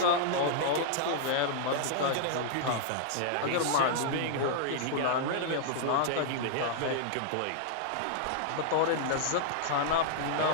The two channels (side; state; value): both; different; correlation -0.01